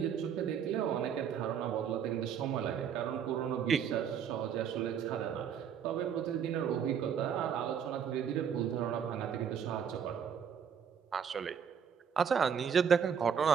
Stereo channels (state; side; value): quieter; left; 7.8 dB